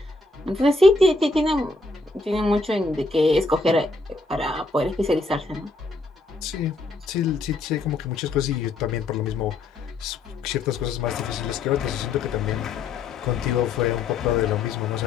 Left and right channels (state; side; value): quieter; right; 3.3 dB